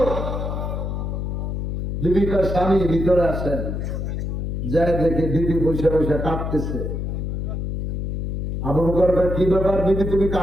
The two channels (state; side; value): noise; left; hum, 2 dB below the sound